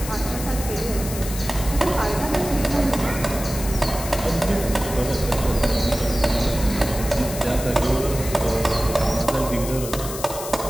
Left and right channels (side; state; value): left; noise; hiss, 9 dB below the sound